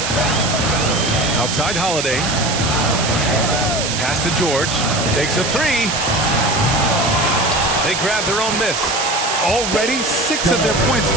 Outside Holiday. Pass to George. Takes a three. They grab their own miss. Already 6 of their points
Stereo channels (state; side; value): noise; right; hiss, 3 dB below the sound